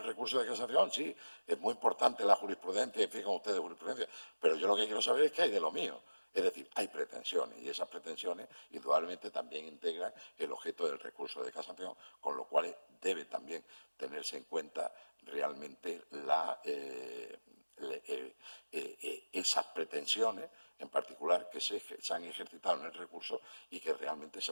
recurso de casación, sí, es muy importante la jurisprudencia, y fijan ustedes jurisprudencia, pero yo lo que quiero saber es qué hay de lo mío. Es decir, hay pretensiones y esas pretensiones indudablemente también integran el objeto del recurso de casación, con lo cual debe también tenerse en cuenta realmente esas pretensiones en particular que se han ejercitado en el recurso y que realmente se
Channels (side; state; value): both; inverted; correlation -1.00